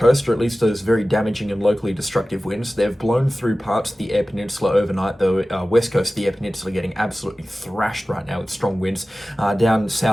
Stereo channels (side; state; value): both; normal; correlation 0.96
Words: or at least those very damaging and locally destructive winds. They've blown through parts of the Eyre Peninsula overnight, the west coast of the Eyre Peninsula getting absolutely thrashed right now with strong winds. Down